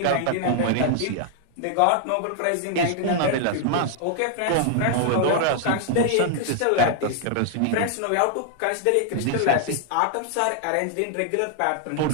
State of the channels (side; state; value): both; different; correlation 0.00